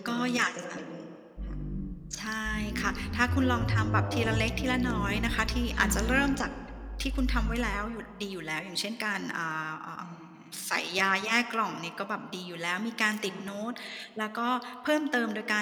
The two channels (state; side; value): identical; both; correlation 1.00